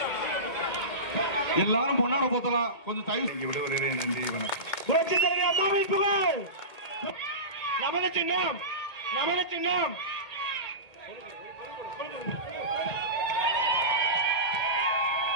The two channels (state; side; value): late; right; 1.9 ms